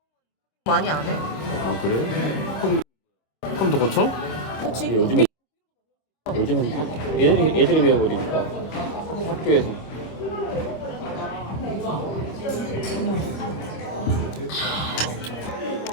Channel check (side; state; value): right; late; 26 ms